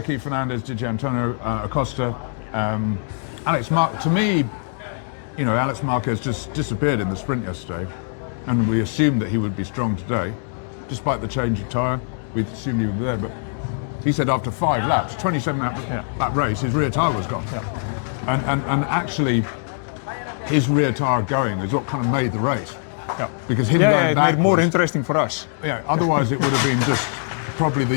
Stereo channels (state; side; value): silent; right; digital silence